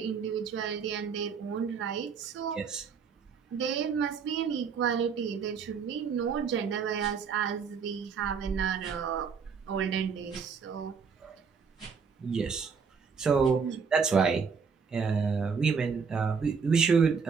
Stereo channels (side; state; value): left; quieter; 5.9 dB